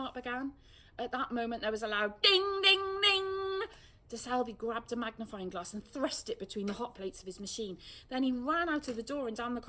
began. At that moment there was a loud ding, ding, ding. De Selby grabbed a magnifying glass and thrust it between the hot plates of his machine. Then he ran out of the door and down the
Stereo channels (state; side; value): identical; both; correlation 1.00